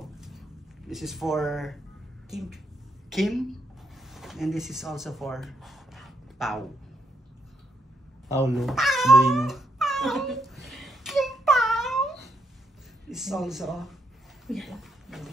This is for Kim. And this is also for Pao. Paulo. Brino. Kim Pao! This is also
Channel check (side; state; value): both; normal; correlation 0.78